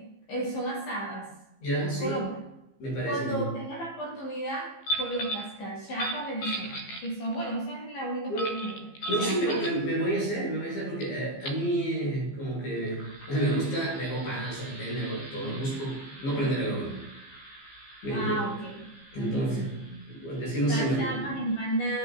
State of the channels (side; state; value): right; late; 15 ms